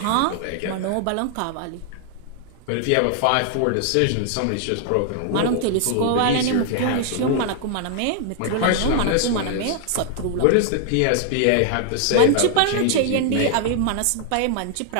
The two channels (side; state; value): both; different; correlation 0.00